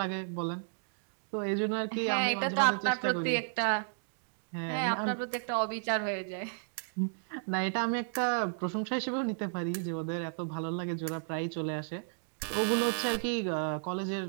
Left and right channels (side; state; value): left; silent; digital silence